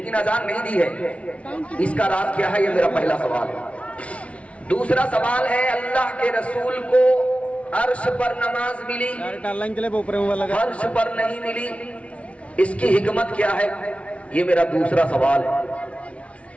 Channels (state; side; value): late; right; 0.063 ms